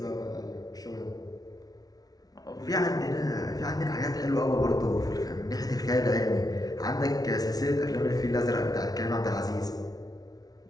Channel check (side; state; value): right; late; 0.18 ms